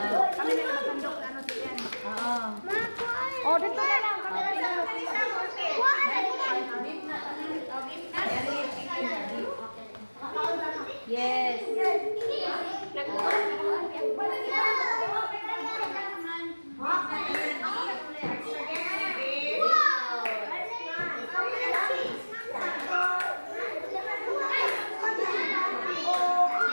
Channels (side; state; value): both; inverted; correlation -1.00